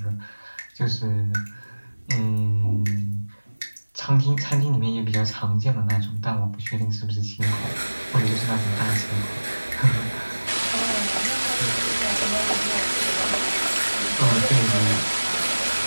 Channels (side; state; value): both; inverted; correlation -1.00